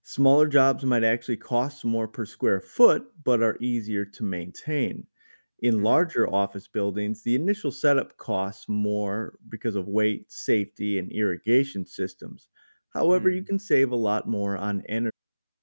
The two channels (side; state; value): both; inverted; correlation -1.00